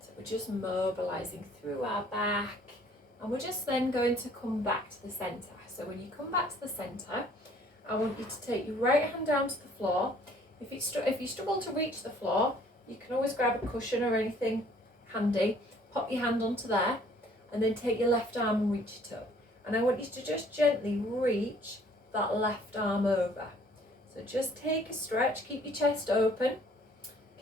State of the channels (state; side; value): normal; both; correlation 0.58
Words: we're just mobilizing through our back, and we're just then going to come back to the center. So when you come back to the center, I want you to take your right hand down to the floor. If you struggle to reach the floor, you can always grab a cushion or anything handy, pop your hand onto there, and then take your left arm and reach it up. And I want you to just gently reach that left arm over. So just take a stretch, keep your chest open,